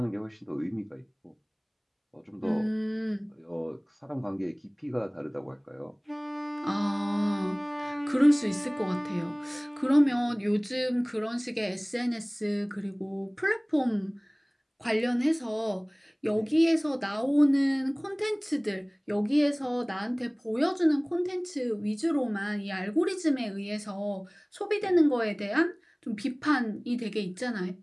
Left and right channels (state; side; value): identical; both; correlation 1.00